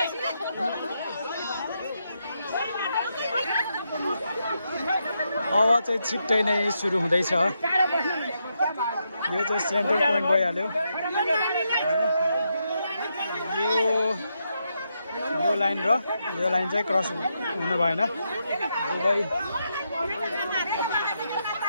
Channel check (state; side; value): inverted; both; correlation -0.82